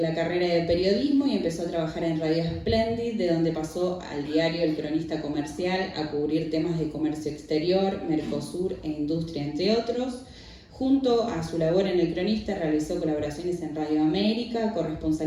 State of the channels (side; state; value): both; identical; correlation 1.00